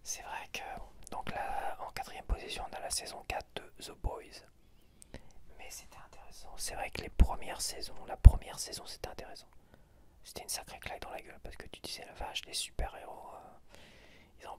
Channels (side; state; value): both; identical; correlation 1.00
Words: C'est vrai que. Donc là, en 4ème position, on a la saison 4 de The Boys. Mais c'était intéressant. C'est vrai que la première saison c'était intéressant. C'était une sacrée claque dans la gueule parce que tu disais la vache, les super-héros, ils en